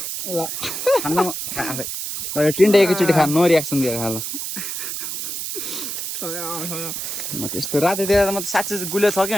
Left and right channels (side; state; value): right; noise; hiss, 5 dB below the sound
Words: ल खान्न आफै ल यो टिन्डे एकैचोटि खा नो रियाक्सन दिएर खा ल त्यस्तो रातितिर त म त साँच्चै गुले छ